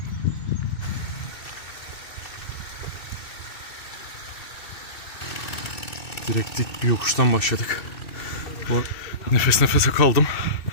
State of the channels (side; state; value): right; late; 2.6 ms